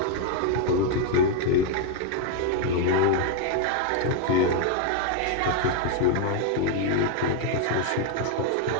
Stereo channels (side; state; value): both; different; correlation 0.01